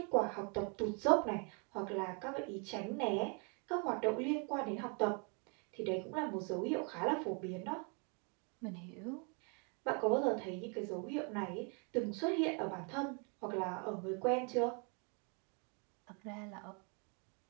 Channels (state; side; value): quieter; left; 36.5 dB